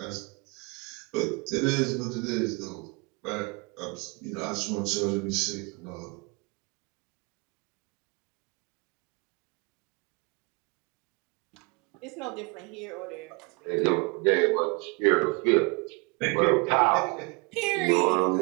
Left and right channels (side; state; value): left; quieter; 29.5 dB